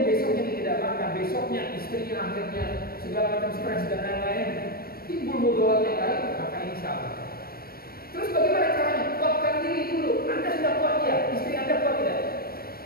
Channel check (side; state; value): right; late; 0.44 ms